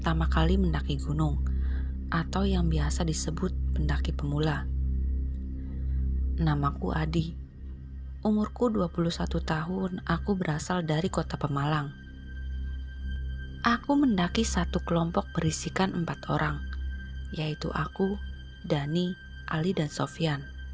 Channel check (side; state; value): both; identical; correlation 1.00